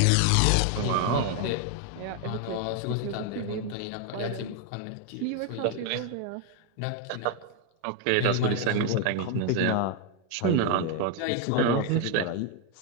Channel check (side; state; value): both; different; correlation 0.01